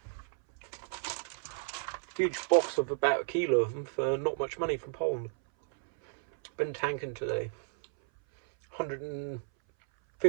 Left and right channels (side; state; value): left; silent; 56 dB below the other